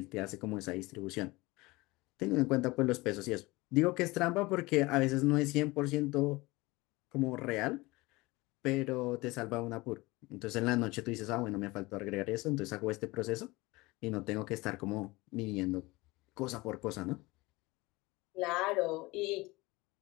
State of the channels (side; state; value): right; quieter; 22.0 dB